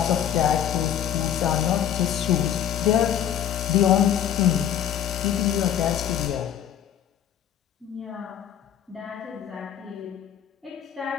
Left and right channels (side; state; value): right; quieter; 10.0 dB